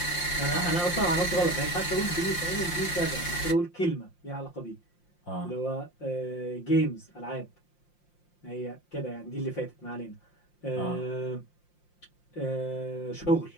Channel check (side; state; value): right; late; 5.7 ms